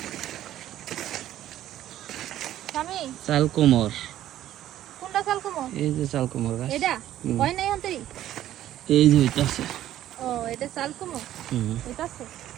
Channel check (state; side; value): quieter; left; 12.7 dB